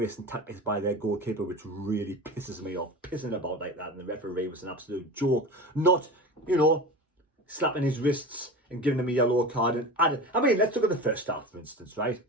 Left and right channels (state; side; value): normal; both; correlation 0.31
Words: tactics by their goalkeeper, which really pisses me off. Pissing about like that. And the referee was an absolute joke. Not, you know, slapping his wrists and giving him a yellow card. And let's look at the first half, for instance, right?